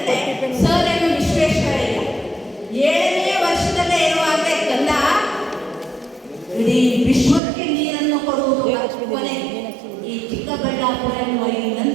ಸರ್ ಎಂ ವಿಶ್ವೇಶ್ವರಯ್ಯ 7ನೇ ವರ್ಷದಲ್ಲೇ ಇರುವಾಗ ಕಂದ ಇಡೀ ವಿಶ್ವಕ್ಕೆ ನೀರನ್ನು ಕೊಡುವುದು ಕೊನೆ ಈ ಚಿಕ್ಕಬಳ್ಳಾಪುರ ಎನ್ನುವ ಈ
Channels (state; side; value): drops out; left; at 7.4 s